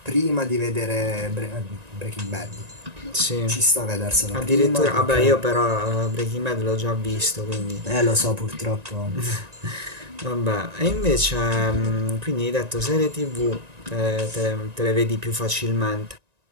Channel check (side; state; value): left; late; 1.9 ms